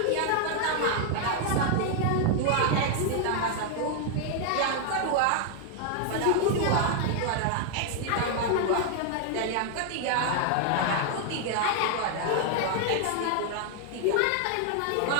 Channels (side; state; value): both; different; correlation 0.00